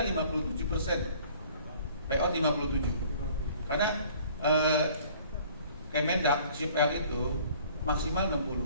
57%, payout 57. Karena Kemendak CPR itu maksimal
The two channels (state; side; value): inverted; both; correlation -0.53